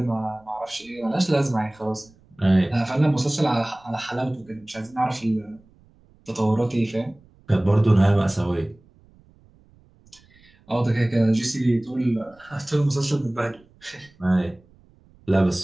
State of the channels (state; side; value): noise; right; rumble, 29 dB below the sound